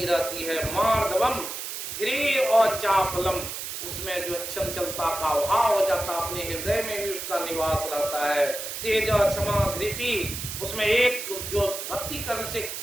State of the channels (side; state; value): right; noise; hiss, 6 dB below the sound